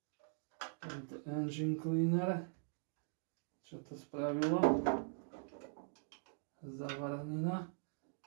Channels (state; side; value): silent; left; digital silence